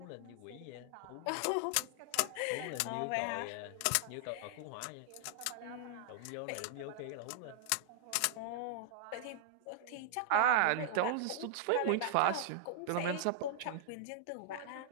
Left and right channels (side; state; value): both; different; correlation -0.01